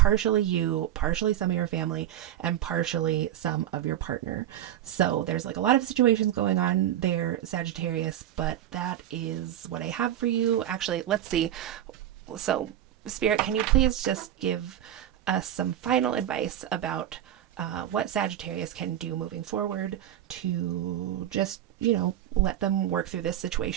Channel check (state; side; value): quieter; left; 11.9 dB